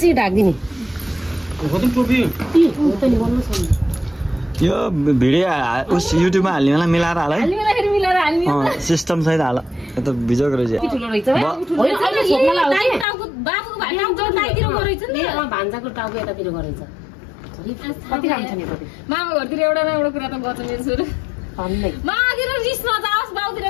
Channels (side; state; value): right; drops out; at 13.1 s